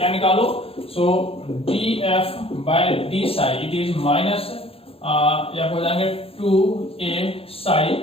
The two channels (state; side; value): late; right; 0.27 ms